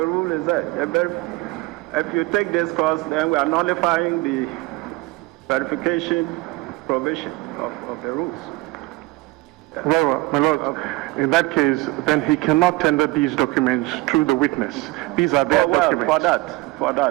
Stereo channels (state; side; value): quieter; left; 21.1 dB